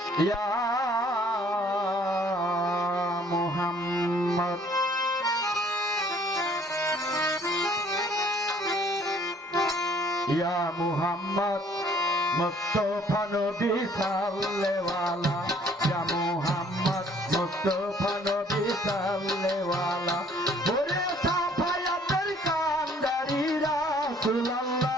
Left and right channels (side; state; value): both; normal; correlation 0.59